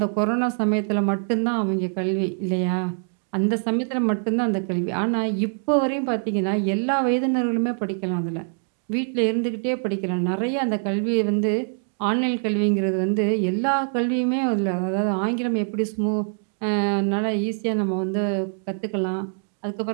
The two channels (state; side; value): silent; left; 62 dB below the other